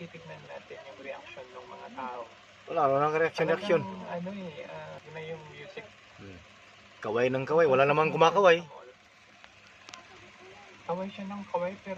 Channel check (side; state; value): both; identical; correlation 1.00